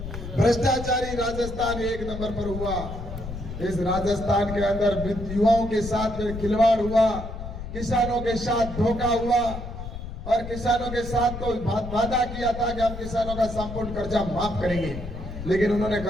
भ्रष्टाचारी राजस्थान 1 नंबर पर हुआ। इस राजस्थान के अंदर युवाओं के साथ में खिलवाड़ हुआ, किसानों के साथ धोखा हुआ और किसानों के साथ तो वादा किया था कि हम किसानों का संपूर्ण कर्जा माफ करेंगे, लेकिन उन्होंने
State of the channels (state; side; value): noise; left; rumble, 8 dB below the sound